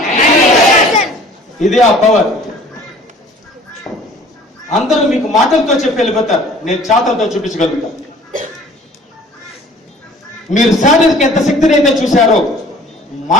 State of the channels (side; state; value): both; normal; correlation 0.50